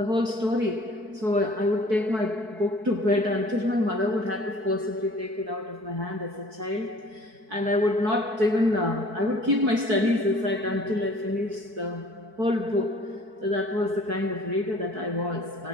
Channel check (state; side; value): late; left; 4.6 ms